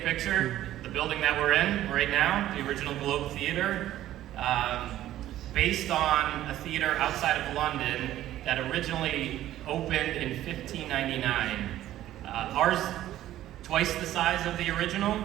picture. The building that we're in right now, the original Globe Theater, based on a theater outside of London that originally opened in 1599. Ours, twice the size of the original.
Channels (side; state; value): left; quieter; 13.4 dB